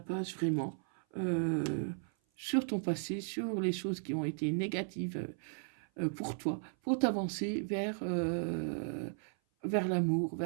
vraiment sur ton passé, sur les choses qui ont été négatives pour toi, pour t'avancer vers l'amour,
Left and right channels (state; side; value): silent; left; 54 dB below the other